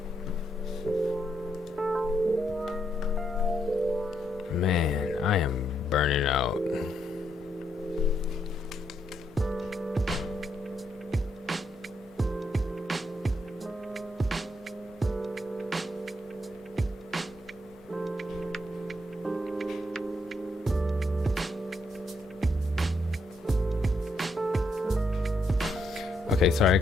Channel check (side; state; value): both; normal; correlation 0.77